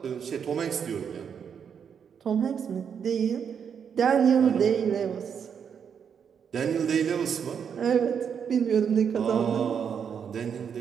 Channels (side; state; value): left; quieter; 7.3 dB